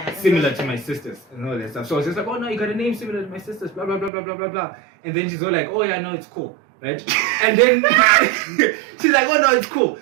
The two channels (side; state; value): left; drops out; at 4.1 s